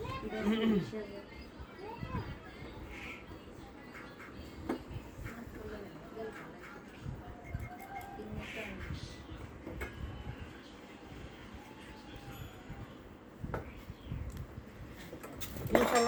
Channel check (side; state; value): both; identical; correlation 1.00